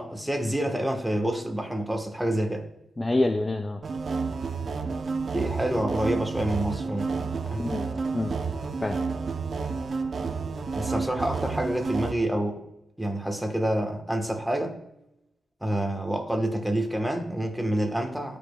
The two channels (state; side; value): normal; both; correlation 0.92